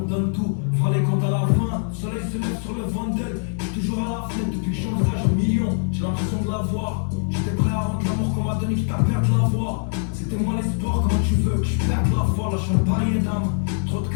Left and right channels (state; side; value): silent; right; digital silence